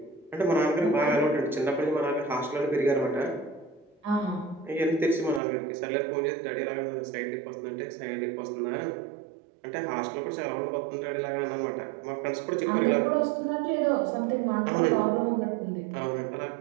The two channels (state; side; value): drops out; left; at 5.4 s